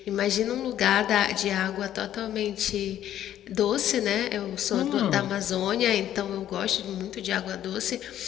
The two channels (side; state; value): right; quieter; 11.5 dB